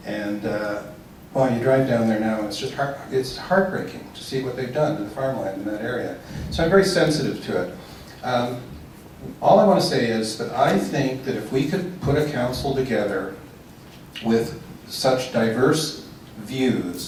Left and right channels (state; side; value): identical; both; correlation 1.00